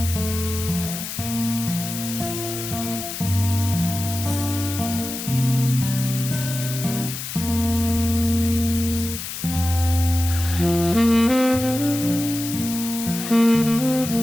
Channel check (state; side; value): noise; left; hiss, 7 dB below the sound